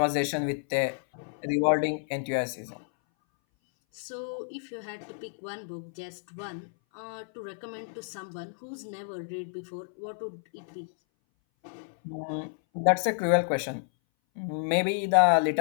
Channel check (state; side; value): silent; right; 58 dB below the other